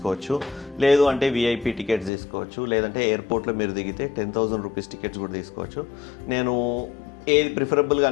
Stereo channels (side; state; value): right; drops out; at 2.1 s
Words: లేదు అంటే విఐపి టికెట్స్ తీసుకోవచ్చు, లేదంటే ఎయిర్పోర్ట్లో మీరు దిగితే 10,000 రూపీస్ టికెట్స్ కూడా తీసుకోవచ్చు. నేను ఏది ప్రిఫరబుల్గా